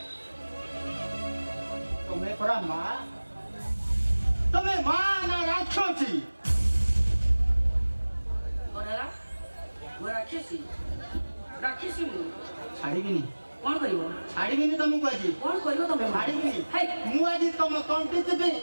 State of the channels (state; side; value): inverted; both; correlation -1.00